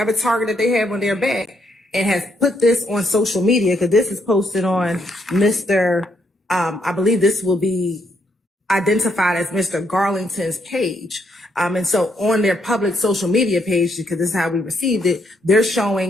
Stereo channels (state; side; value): normal; both; correlation 0.75